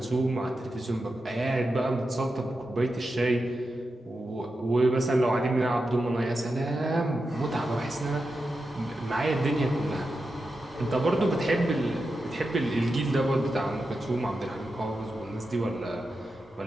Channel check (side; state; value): both; normal; correlation 0.89